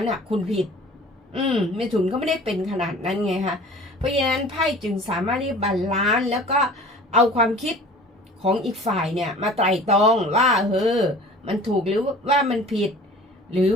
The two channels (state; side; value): normal; both; correlation 0.44